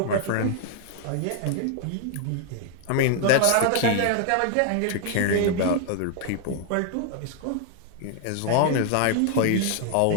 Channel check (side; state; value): both; different; correlation 0.00